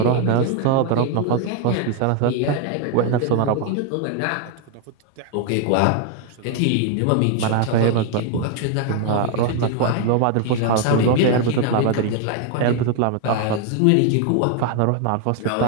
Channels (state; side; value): different; both; correlation 0.00